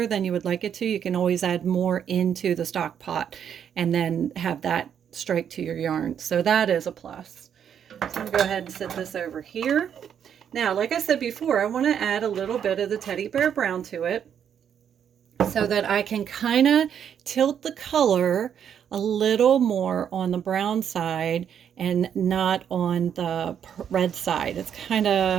than you would like it to, you can always add more into the stock pot and then have that strike to your yarn. So that is a plus. So I'm going to go ahead and set this over here. Now, like I said before, I want to add a little bit of the Teddy Bear Brown to it so that I can kind of tilt the color a little more on the brown side and not on the red side. It's kind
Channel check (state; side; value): quieter; left; 8.6 dB